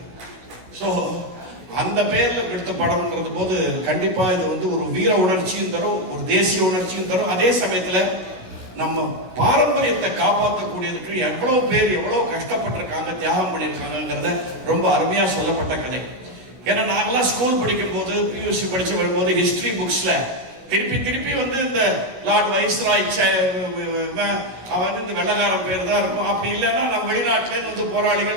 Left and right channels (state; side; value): late; left; 16 ms